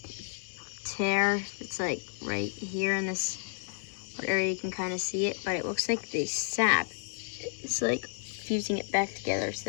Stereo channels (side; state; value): right; silent; digital silence